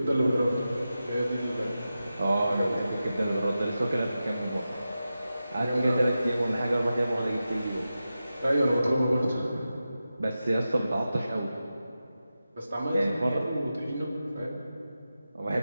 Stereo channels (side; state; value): both; inverted; correlation -0.92